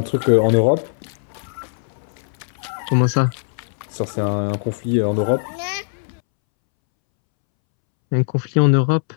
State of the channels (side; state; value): right; silent; 65 dB below the other